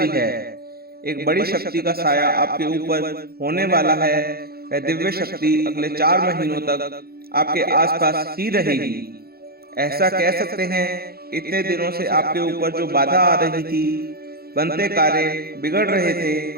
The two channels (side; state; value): left; late; 0.45 ms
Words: है। एक बड़ी शक्ति का साया आपके ऊपर होने वाला है। वह दिव्य शक्ति अगले 4 महीनों तक आपके आसपास ही रहेगी। ऐसा कह सकते हैं, इतने दिनों से आपके ऊपर जो बाधा आ रही थी, बनते कार्य बिगड़ रहे थे,